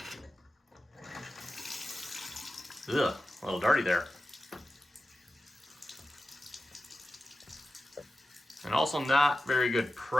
Ugh, a little dirty there. And also not very good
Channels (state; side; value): normal; both; correlation 0.94